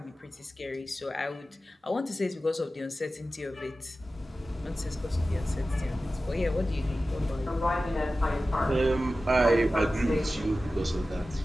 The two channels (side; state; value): both; normal; correlation 0.95